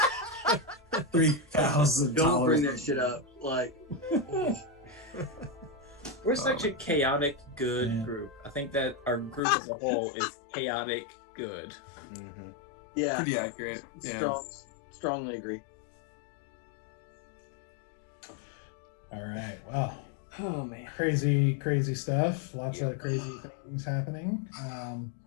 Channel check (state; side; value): drops out; right; at 9.4 s